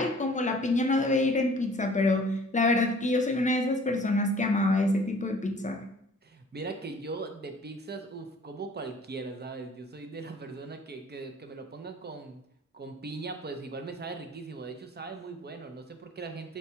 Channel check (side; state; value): both; normal; correlation 0.52